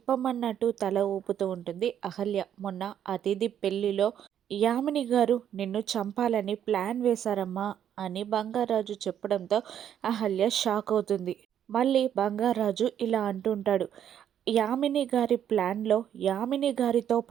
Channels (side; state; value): left; quieter; 9.7 dB